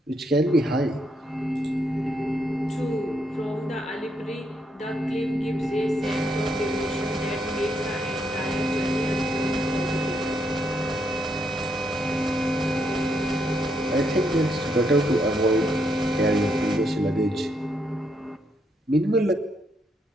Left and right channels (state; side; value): normal; both; correlation 0.77